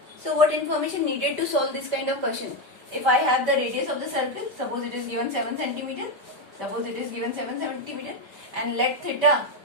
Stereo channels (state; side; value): late; left; 5.0 ms